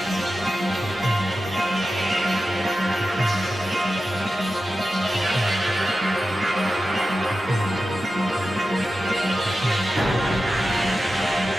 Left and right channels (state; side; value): normal; both; correlation 0.93